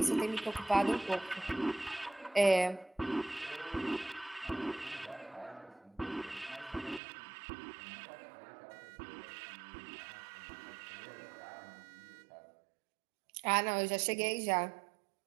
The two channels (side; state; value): left; drops out; at 7.0 s